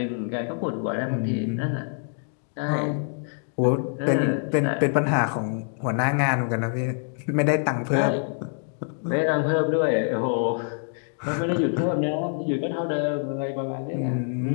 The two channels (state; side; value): silent; right; 58 dB below the other